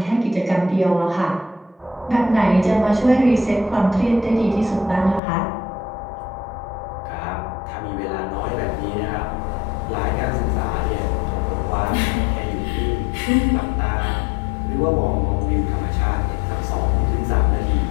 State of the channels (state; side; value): drops out; right; at 5.2 s